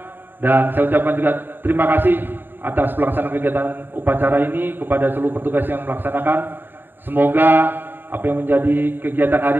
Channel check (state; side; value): late; left; 0.094 ms